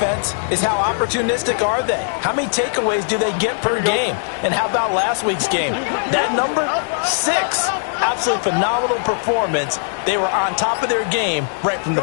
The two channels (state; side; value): silent; right; digital silence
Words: is how opportunistic are they? How many takeaways do they get per game? And how about last week's game? That number? 6. Absolutely phenomenal performance. They were on top of their game right from the